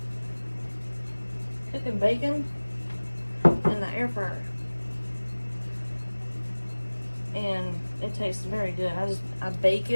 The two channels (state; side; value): inverted; both; correlation -1.00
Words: cooking bacon in the air fryer, and it tastes very good. I bake